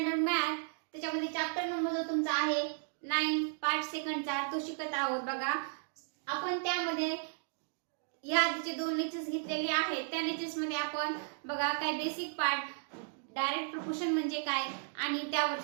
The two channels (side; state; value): left; silent; digital silence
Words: मॅथ त्याच्यामध्ये चॅप्टर नंबर जो तुमचा आहे 9 पार्ट सेकंडचा तो शिकत आहोत. बघा, आपण त्यामध्ये या आधीचे 2 लेक्चर्स घेतलेले आहेत. त्या लेक्चर्स मध्ये आपण बघा काय बेसिक पार्ट डायरेक्ट प्रपोर्शन म्हणजे काय आणि